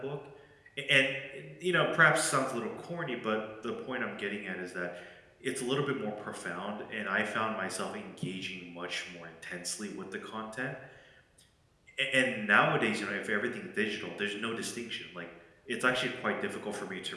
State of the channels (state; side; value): identical; both; correlation 1.00